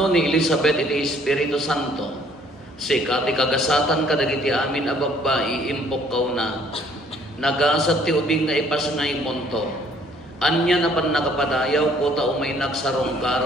ni Elizabeth iti Espiritu Santo sika ti kagasatan kadagiti amin a babbai impok kaw na nagasat ti ubing nga ipasngay monto anya na pan nakapadayaw ko ta umay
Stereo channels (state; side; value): normal; both; correlation 0.60